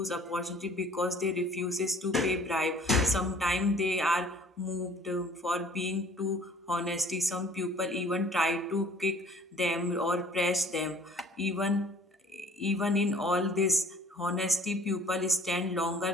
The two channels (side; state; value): both; normal; correlation 0.54